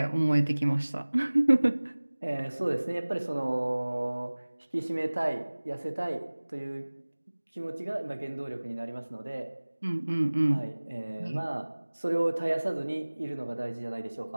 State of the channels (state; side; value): inverted; both; correlation -1.00